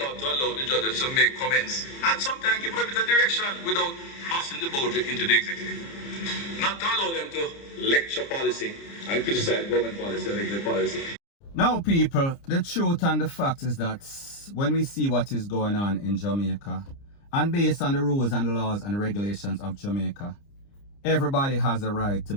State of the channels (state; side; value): late; right; 30 ms